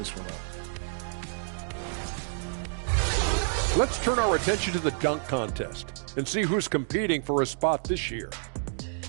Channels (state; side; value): silent; left; digital silence